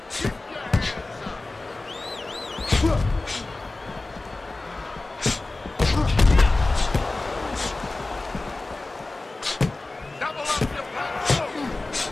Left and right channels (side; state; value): right; quieter; 3.2 dB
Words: Double up your punch.